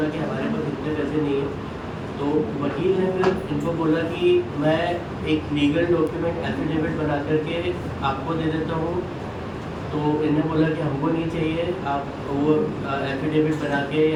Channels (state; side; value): identical; both; correlation 1.00